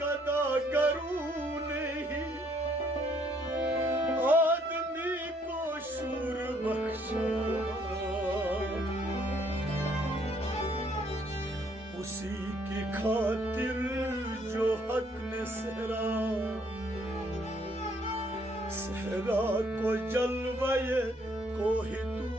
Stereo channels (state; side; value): normal; both; correlation 0.66